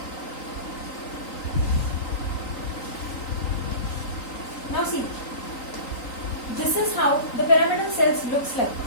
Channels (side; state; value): right; late; 3.9 ms